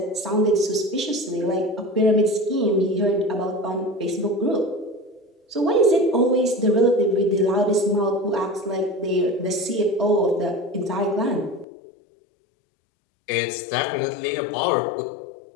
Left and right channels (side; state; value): right; drops out; at 11.7 s